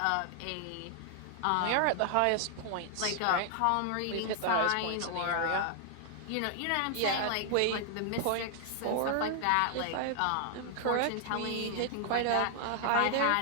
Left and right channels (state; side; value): different; both; correlation 0.00